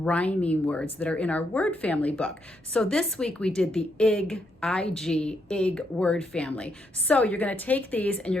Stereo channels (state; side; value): normal; both; correlation 0.77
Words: words that are in our word family book. So this week we did the ig word family. So you're going to take these and